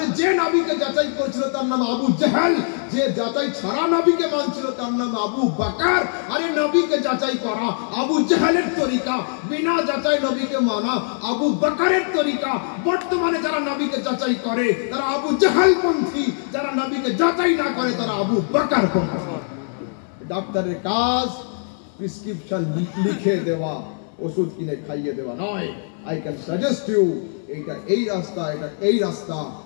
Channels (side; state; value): right; silent; 64 dB below the other